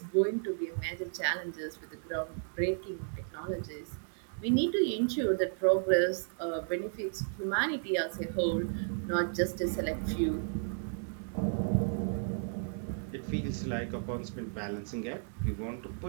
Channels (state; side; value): silent; left; 55 dB below the other